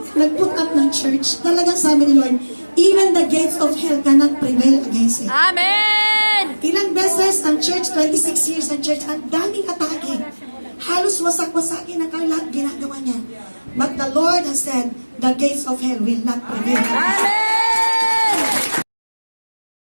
nag-put up ng church, talagang sabi ni Lord, even the gates of hell cannot prevail against it. Amen! Ilang beses ang church, 26 years ang church, ang daming atake. Halos wasak-wasakin ang lahat ginagawa niya. But the Lord has said, the gates of hell will not prevail. Amen!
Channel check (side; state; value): both; inverted; correlation -1.00